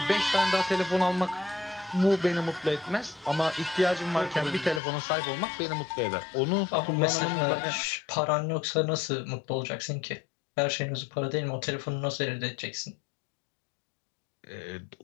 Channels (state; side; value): drops out; right; at 4.8 s